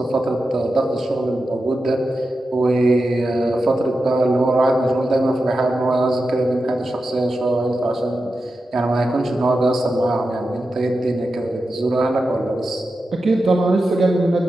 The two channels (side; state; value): both; normal; correlation 0.90